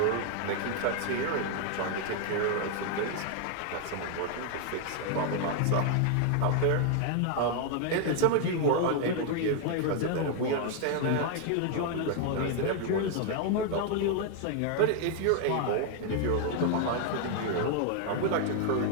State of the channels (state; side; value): different; both; correlation 0.00